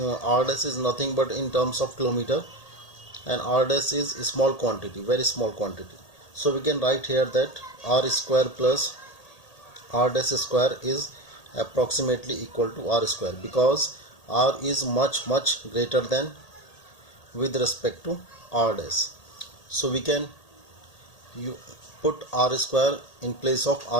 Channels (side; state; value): right; late; 1.8 ms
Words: r dash is nothing but in terms of kilometer and r dash is a small quantity, very small quantity. So we can write here that r square plus r dash square is approximately equal to r square, because r is much greater than with respect to r dash. So we can put r square in place of